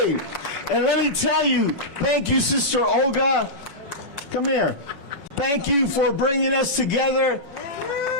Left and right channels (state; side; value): late; left; 5.5 ms